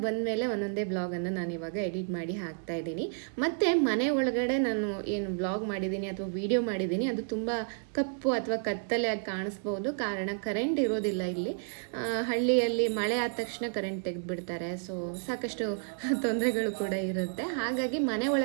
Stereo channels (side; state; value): left; silent; digital silence